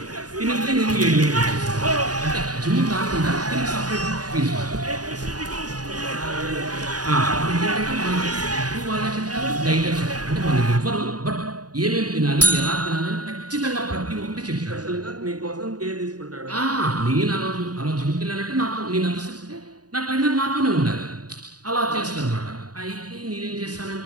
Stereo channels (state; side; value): late; left; 0.68 ms